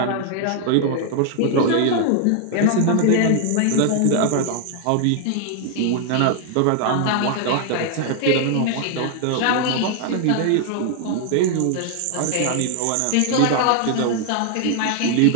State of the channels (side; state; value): both; different; correlation 0.00